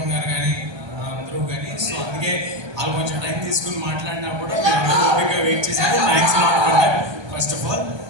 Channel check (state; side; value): late; left; 1.2 ms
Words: గారు కానీ అందరూ కానీ. సో అందుకే వాళ్ళు కొంచెం టైం తీసుకుని మాట్లాడినా కూడా ఓపికగా వెయిట్ చేశారు. Thanks lot. First of all